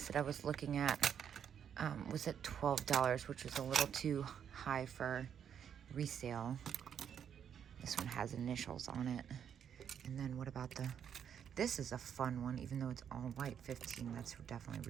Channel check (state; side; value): quieter; left; 8.4 dB